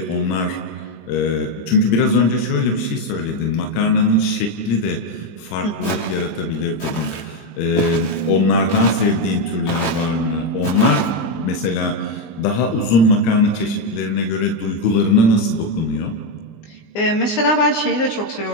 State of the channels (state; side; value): late; right; 19 ms